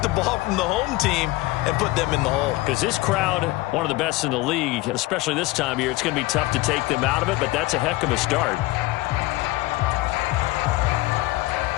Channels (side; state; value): right; quieter; 19.5 dB